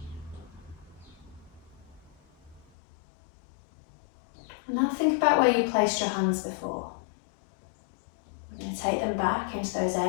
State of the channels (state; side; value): drops out; right; at 2.7 s